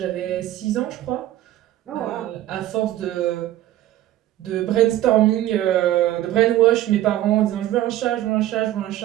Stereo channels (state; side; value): quieter; left; 13.9 dB